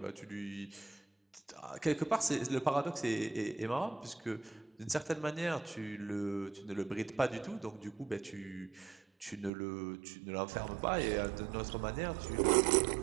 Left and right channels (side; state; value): left; drops out; at 9.5 s